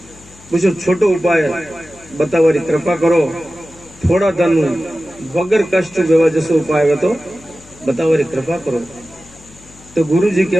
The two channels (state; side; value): noise; left; hum, 24 dB below the sound